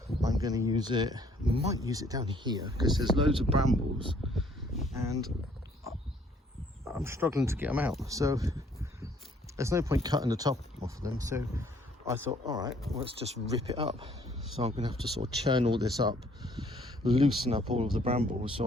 I'm going to use it, might use it down here because there's loads of brambles and I'm struggling to get them out. So there's no point cutting the top off of them. So I thought, all right, let's just rip it up. So I'm going to have to sort of churn all this up, loosen up all of the brambles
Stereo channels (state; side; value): normal; both; correlation 0.62